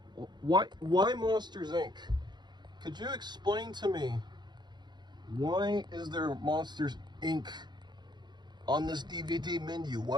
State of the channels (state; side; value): late; left; 0.21 ms